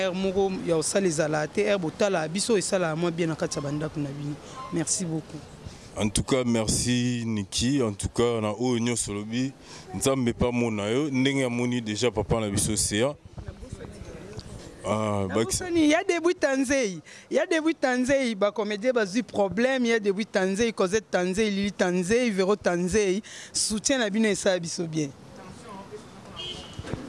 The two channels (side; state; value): both; identical; correlation 1.00